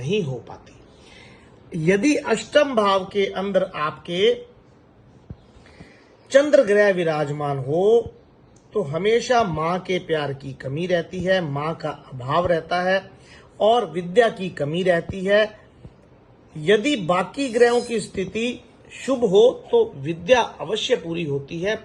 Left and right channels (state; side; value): identical; both; correlation 1.00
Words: हो पाती। यदि अष्टम भाव के अंदर आपके चंद्र ग्रह विराजमान हो तो हमेशा मां के प्यार की कमी रहती है, मां का अभाव रहता है और विद्या की कमी रहती है। यदि बाकी ग्रहों की स्थिति शुभ हो तो विद्या अवश्य पूरी होती है,